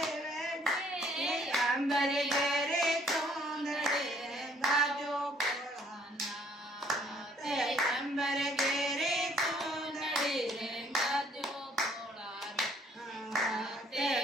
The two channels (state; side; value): normal; both; correlation 0.61